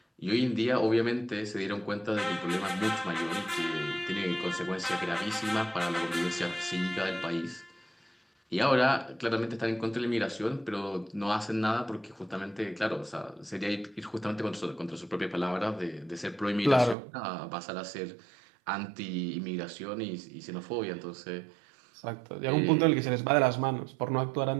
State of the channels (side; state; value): left; drops out; at 16.9 s